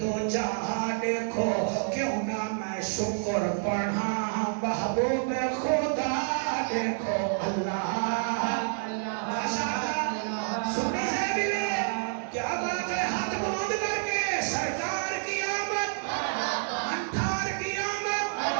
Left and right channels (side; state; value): left; silent; digital silence